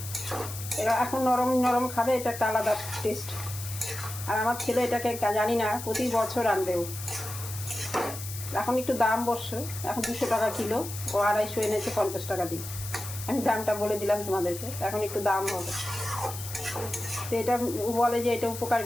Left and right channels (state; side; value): noise; left; hiss, 10 dB below the sound